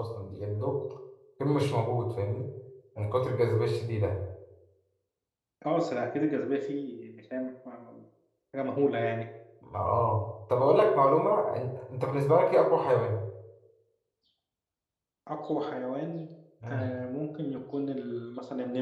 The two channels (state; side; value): identical; both; correlation 1.00